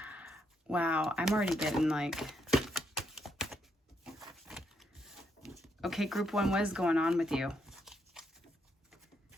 Wow, I'm already getting like... Okay, group one, what is going on with you?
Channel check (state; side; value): normal; both; correlation 0.77